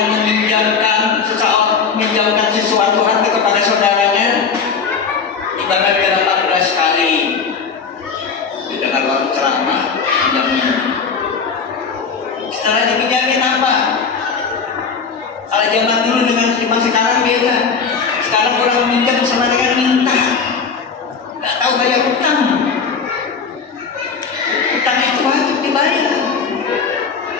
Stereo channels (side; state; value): right; quieter; 5.6 dB